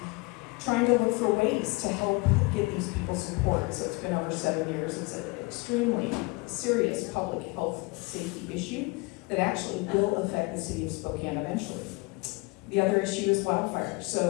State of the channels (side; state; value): right; quieter; 26.2 dB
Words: trying to look for ways to help get these people support. So it's been over 7 years. It's an extremely serious public health safety issue that actually will affect the city of Spokane eventually. The other issue is wildfire.